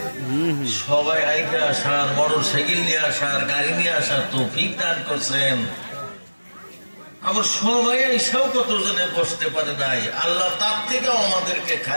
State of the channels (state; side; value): inverted; both; correlation -1.00